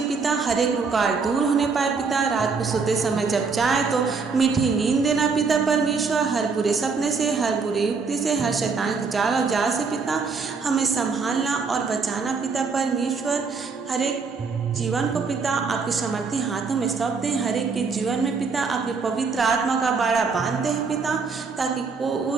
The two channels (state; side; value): quieter; left; 4.9 dB